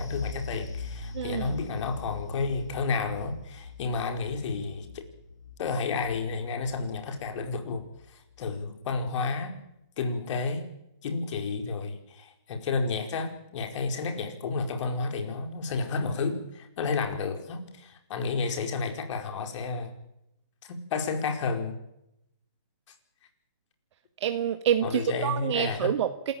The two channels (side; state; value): both; inverted; correlation -0.47